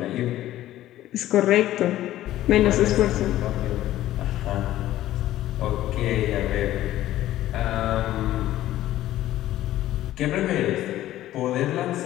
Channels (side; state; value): right; quieter; 14.1 dB